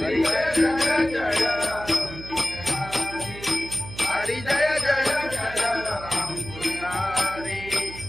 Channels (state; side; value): noise; right; hum, 13 dB below the sound